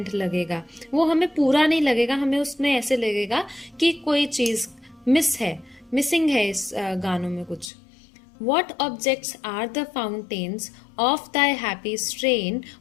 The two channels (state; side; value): drops out; right; at 7.7 s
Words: लगेगा, वो हमें पूरा नहीं लगेगा, हमें उसमें ऐसे लगेगा कि कोई चीज़ मिसिंग है इस गानों में कुछ। What objects are the fountains of thy happy strain?